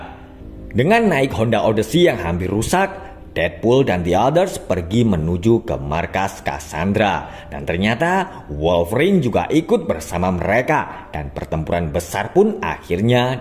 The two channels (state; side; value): identical; both; correlation 1.00